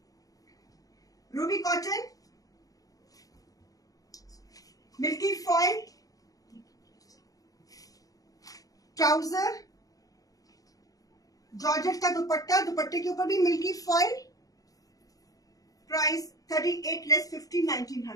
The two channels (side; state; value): right; late; 0.17 ms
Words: ruby cotton, milky foil trouser, georgette का दुपट्टा, दुपट्टे के ऊपर भी मिल्की फॉइल, प्राइस 38 लेस 50,